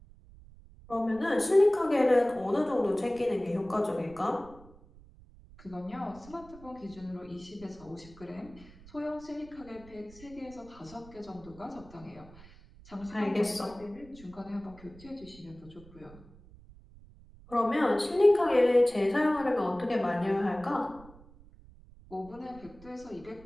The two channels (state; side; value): noise; right; rumble, 22 dB below the sound